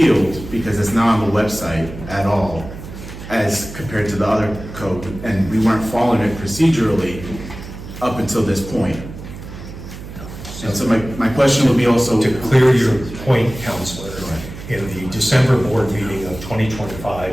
because it's not on the website at all as compared to the other code, and we weren't following it procedurally up until this point. And so my question would be also... To clear your point, Counselor, in the December board meeting of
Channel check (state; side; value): noise; right; hum, 12 dB below the sound